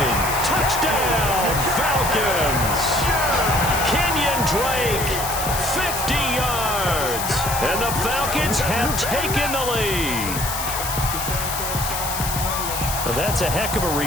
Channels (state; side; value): noise; left; hiss, 5 dB below the sound